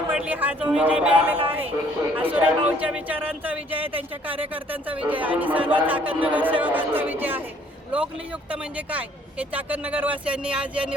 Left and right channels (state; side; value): normal; both; correlation 0.61